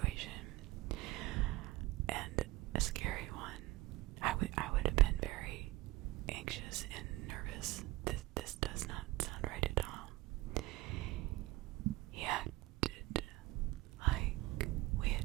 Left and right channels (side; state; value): left; quieter; 19.1 dB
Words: and a scary one. I would have been very anxious and nervous. This does not sound right at all. He acted like we